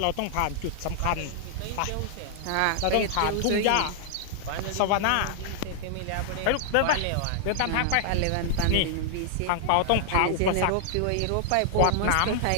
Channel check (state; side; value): different; both; correlation -0.01